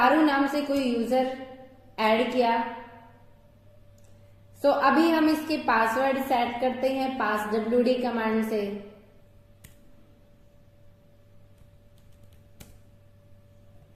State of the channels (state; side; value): identical; both; correlation 1.00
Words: नाम से कोई यूजर ऐड किया। सो अभी हम इसके पासवर्ड सेट करते हैं passwd कमांड से।